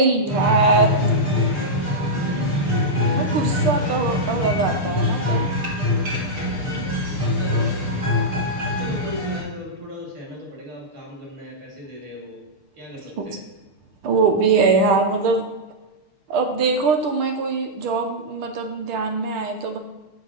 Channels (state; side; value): late; left; 6.6 ms